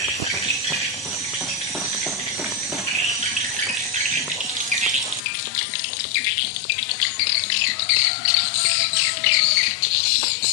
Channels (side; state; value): right; drops out; at 5.2 s